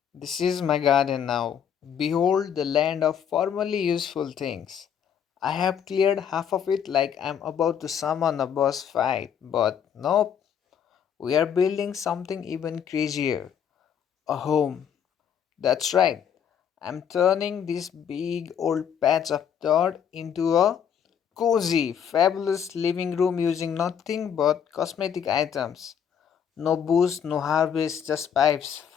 This is my garden now. Behold the land of formerly useful things. I have cleared half of it like I'm about to summon a boss fight, but nope, we are building something even crazier, a home. That's right, I'm turning this big old patch of dirt into a cozy, fabulous living room using nothing but cosmetic items. No booze, no harvest, just pipes,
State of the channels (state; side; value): quieter; right; 8.2 dB